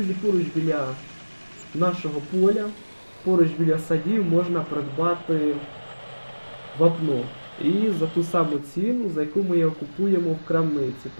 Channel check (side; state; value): both; inverted; correlation -1.00